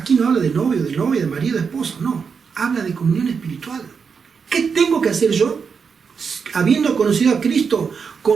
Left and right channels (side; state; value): left; quieter; 5.9 dB